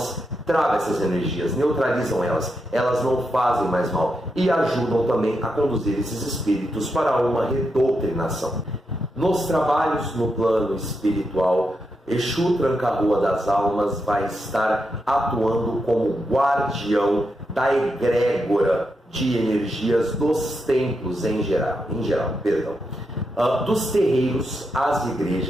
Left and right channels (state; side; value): normal; both; correlation 0.84